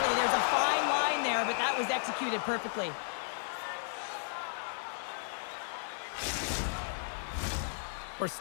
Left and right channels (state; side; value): silent; right; 55 dB below the other